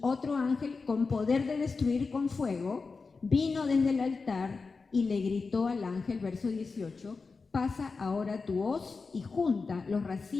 otro ángel con poder de destruir con fuego vino desde el altar y le gritó al ángel, verso 18, pasa ahora tu hoz y junta los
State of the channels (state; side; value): quieter; right; 4.4 dB